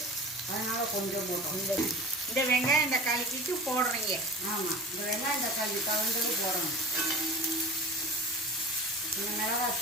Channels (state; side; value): normal; both; correlation 0.34